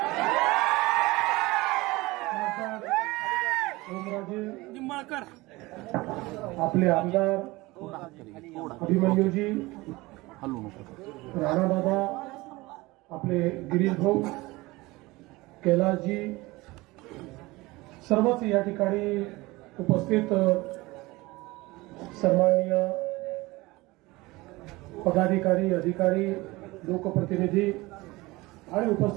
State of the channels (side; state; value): left; quieter; 21.3 dB